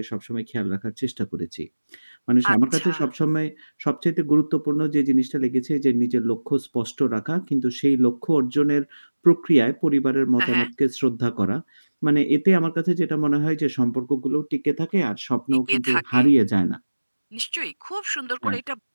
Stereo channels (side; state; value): both; inverted; correlation -1.00